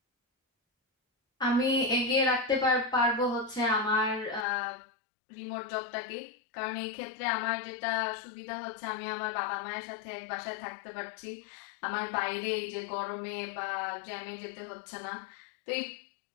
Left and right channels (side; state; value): right; drops out; at 4.5 s